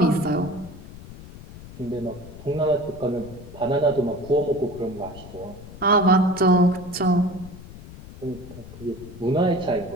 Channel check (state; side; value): noise; left; rumble, 16 dB below the sound